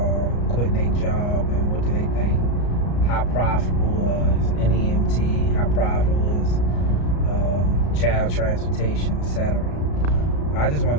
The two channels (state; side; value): late; right; 34 ms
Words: quitting their job and what do they think. How profitable is NEMT? How profitable is child transportation, etc. I just